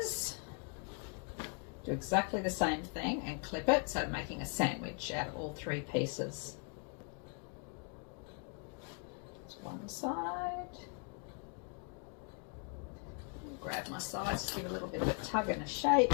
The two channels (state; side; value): quieter; right; 39.5 dB